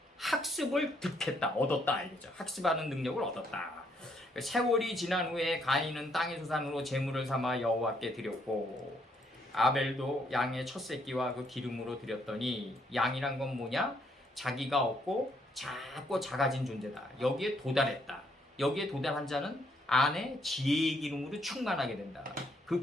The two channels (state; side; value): normal; both; correlation 0.71